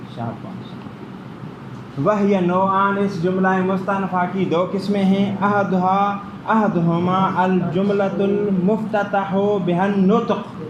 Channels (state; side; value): identical; both; correlation 1.00